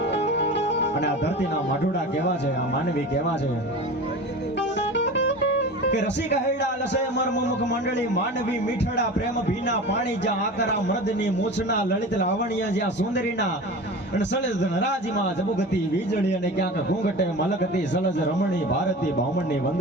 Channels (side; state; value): both; normal; correlation 0.33